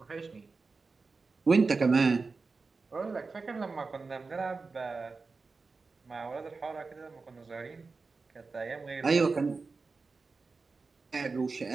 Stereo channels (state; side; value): quieter; left; 4.2 dB